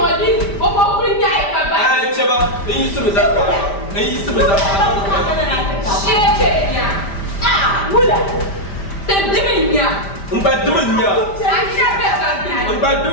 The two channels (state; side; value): late; right; 5.0 ms